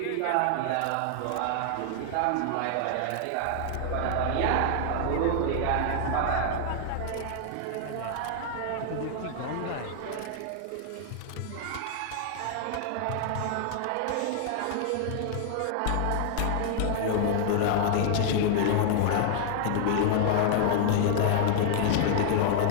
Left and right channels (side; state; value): both; different; correlation -0.01